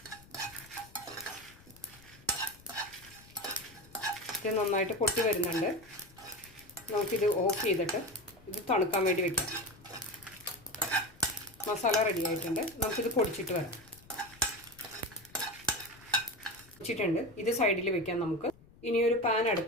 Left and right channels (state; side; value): noise; left; rumble, 24 dB below the sound